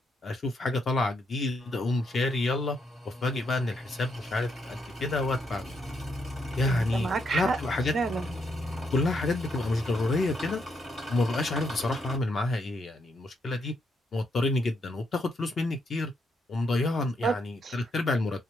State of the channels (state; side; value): normal; both; correlation 0.78